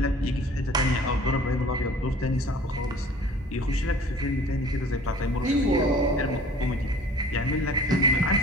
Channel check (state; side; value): normal; both; correlation 0.48